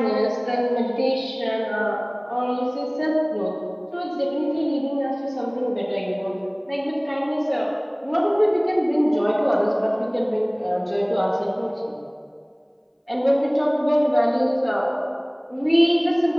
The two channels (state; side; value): identical; both; correlation 1.00